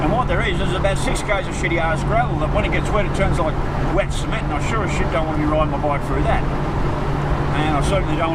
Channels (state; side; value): identical; both; correlation 1.00